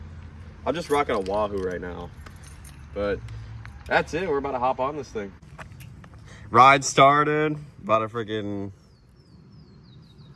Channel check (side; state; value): both; identical; correlation 1.00